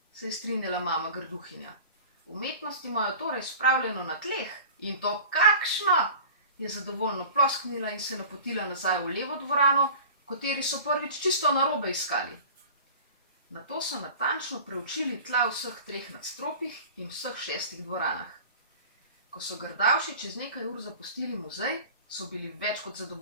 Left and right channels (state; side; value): inverted; both; correlation -0.40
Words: se je strinjala mama Grduhinja. Umetnost imajo torej spravljeno na tleh, in to kakšno, je zadovoljno plosknila in se napotila nazaj v levo dvorano, v kateri so prvič čisto narobe iskali. Nato so natančno preučili tla vseh 3 nadstropjih in vseh 6 dvoranah. Ko so Grdavši čez nekaj ur zapustili muzej, so bili več kot